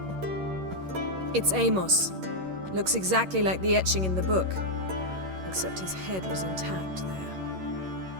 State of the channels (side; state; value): left; late; 11 ms